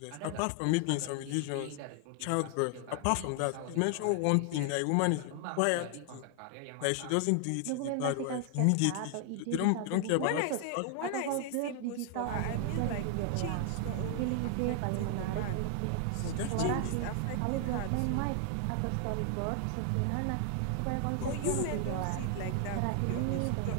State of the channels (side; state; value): both; different; correlation 0.00